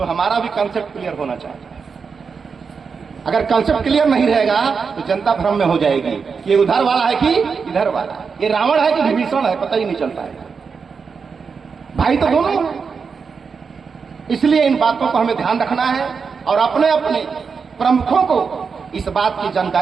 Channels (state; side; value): quieter; left; 5.5 dB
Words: हमारा भी कंसेप्ट क्लियर होना चाहिए। अगर कंसेप्ट क्लियर नहीं रहेगा तो जनता भ्रम में हो जाएगी कि ये उधर वाला है कि इधर वाला है, ये रावण है कि विभीषण है, पता ही नहीं चलता है। भाई तो दोनों हैं। इसलिए इन बातों को हमें ध्यान रखना है और अपने अपने प्रमुखों को इस बात की